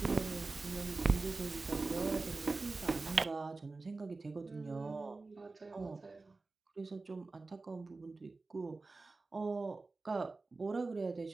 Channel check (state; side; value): quieter; left; 3.6 dB